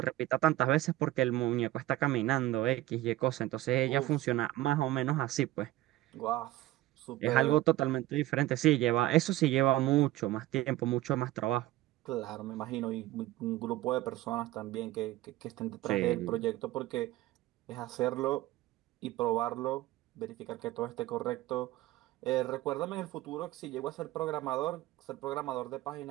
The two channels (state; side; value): quieter; left; 16.2 dB